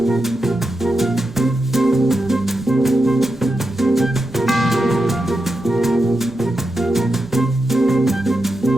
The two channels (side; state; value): right; noise; rumble, 23 dB below the sound